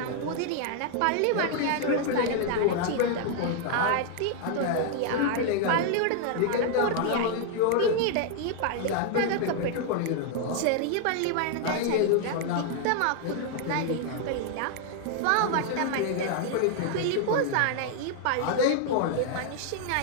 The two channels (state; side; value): different; both; correlation 0.00